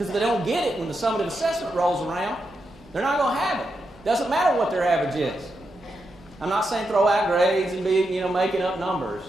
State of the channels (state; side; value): normal; both; correlation 0.85